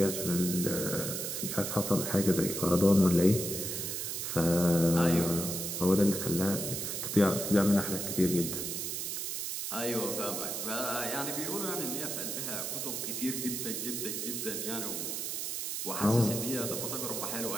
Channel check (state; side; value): noise; right; hiss, 3 dB below the sound